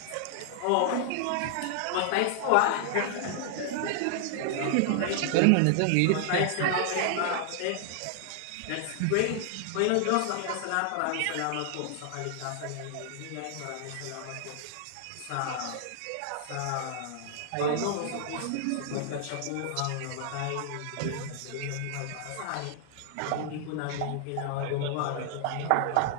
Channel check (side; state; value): both; different; correlation 0.00